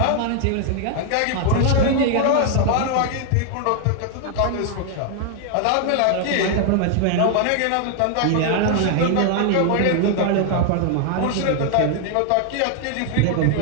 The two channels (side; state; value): both; different; correlation 0.00